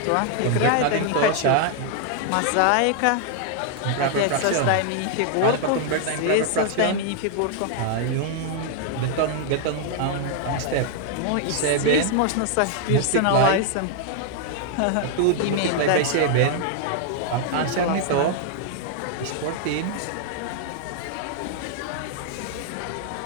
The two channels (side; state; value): both; different; correlation 0.00